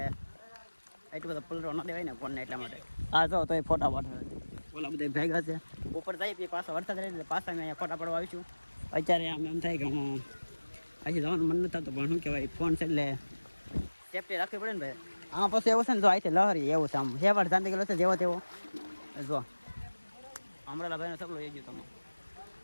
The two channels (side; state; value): both; inverted; correlation -1.00